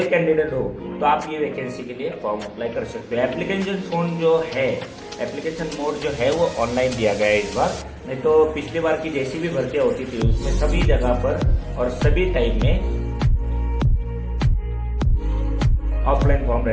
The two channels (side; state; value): both; identical; correlation 1.00